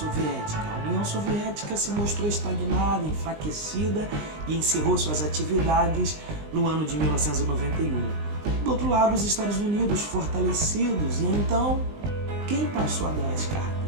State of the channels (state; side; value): late; left; 19 ms